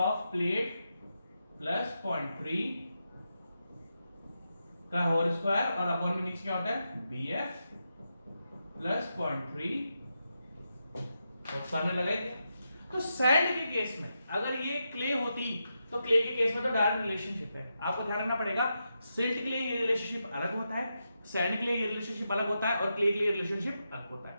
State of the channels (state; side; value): inverted; both; correlation -0.86